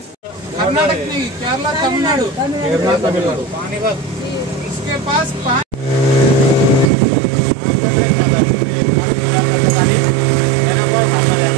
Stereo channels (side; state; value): left; drops out; at 6.9 s